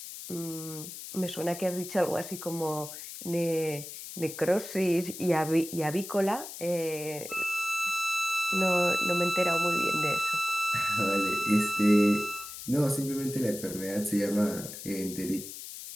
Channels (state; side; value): noise; left; hiss, 11 dB below the sound